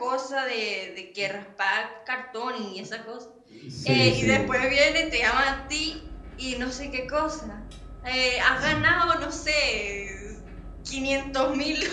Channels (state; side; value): identical; both; correlation 1.00